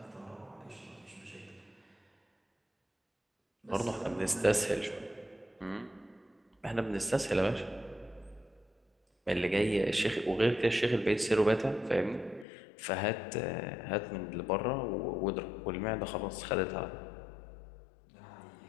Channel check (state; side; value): drops out; right; at 12.5 s